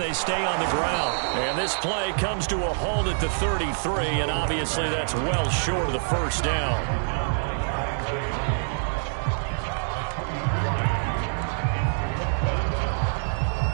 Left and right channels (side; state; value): left; silent; digital silence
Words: stay on the ground. And this play comes to a halt at the 33, and obviously that's well short of the first down.